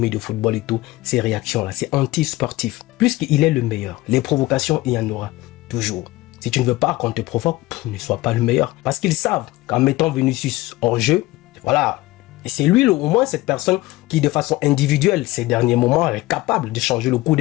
de football et tout. Ces réactions-là, c'est anti-sportif. Puisqu'il est le meilleur, les provocations, il y en aura toujours. Si tu ne veux pas qu'on te provoque, ne sois pas le meilleur. Parce qu'ils savent qu'en mettant Vinicius hors jeu, voilà. Et c'est lui, au moins, cette personne qui, de façon individuelle, ces derniers moments, est capable de changer le cours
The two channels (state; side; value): quieter; right; 19.0 dB